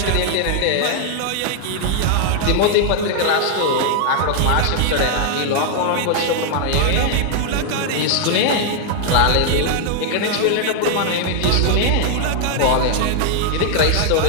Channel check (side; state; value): both; different; correlation 0.00